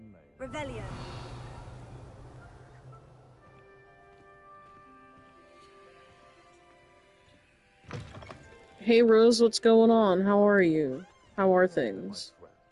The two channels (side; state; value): both; identical; correlation 1.00